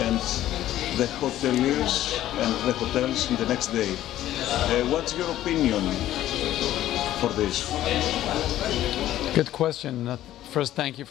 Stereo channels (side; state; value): right; quieter; 13.3 dB